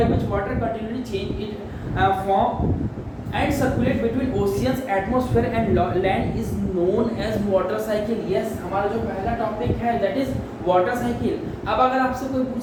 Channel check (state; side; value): identical; both; correlation 1.00